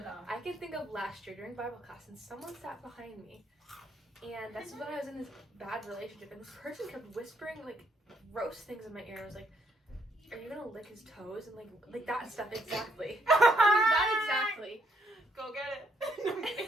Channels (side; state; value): both; normal; correlation 0.72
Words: I can think of last year during Bible class, and someone sat behind me. And that's when I was in this bad relationship. And this person kept whispering, like, gross things in my ear. I was like, are you gonna lick his toes? And, like that stuff, exactly. That exactly. Go get